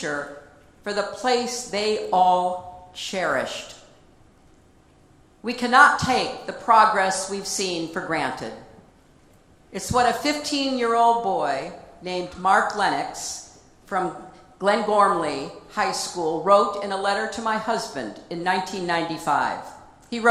for the place they all cherished. We cannot take the progress we've seen for granted. It's what a 15-year-old boy named Mark Lennox from Glengormley High School wrote in a letter to my husband in 1995. He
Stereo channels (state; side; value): identical; both; correlation 1.00